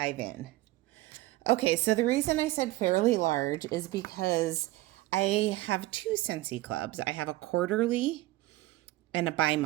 in. Okay, so the reason I said fairly large is because I have two Scentsy Clubs. I have a quarterly and a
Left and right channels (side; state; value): left; quieter; 18.1 dB